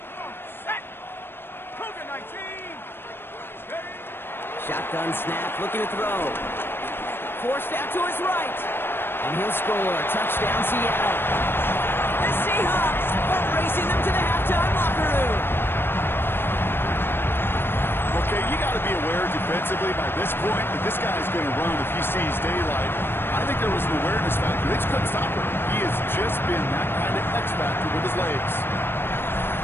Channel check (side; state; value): right; late; 0.10 ms